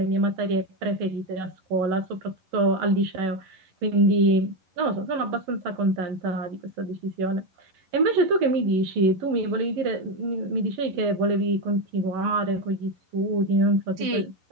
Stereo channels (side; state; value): left; late; 11 ms